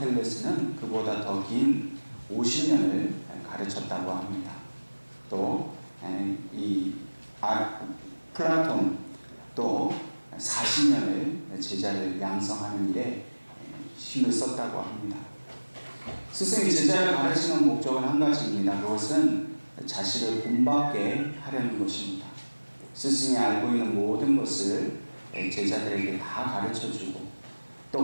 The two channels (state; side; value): inverted; both; correlation -1.00